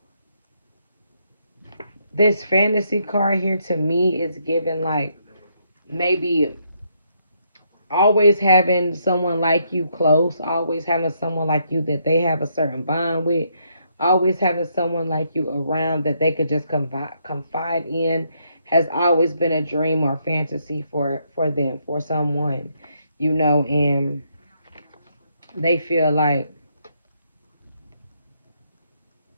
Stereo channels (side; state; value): both; inverted; correlation -0.75